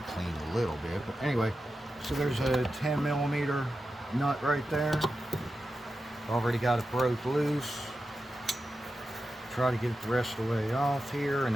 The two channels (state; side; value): normal; both; correlation 0.91